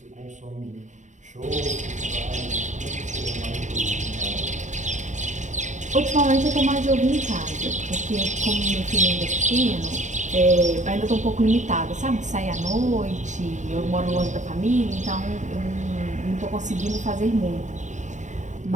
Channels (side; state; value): left; late; 0.35 ms